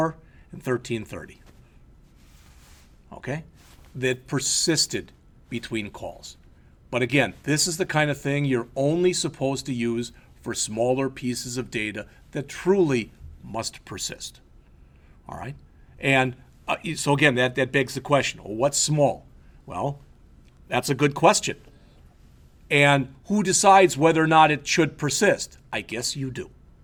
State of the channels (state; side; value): identical; both; correlation 1.00